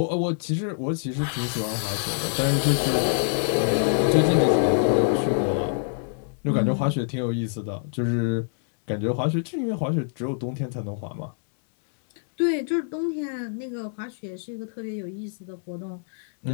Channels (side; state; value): right; silent; digital silence